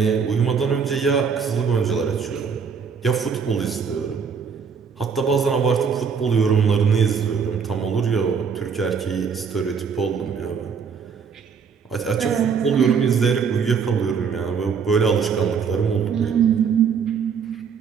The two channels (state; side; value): quieter; left; 6.3 dB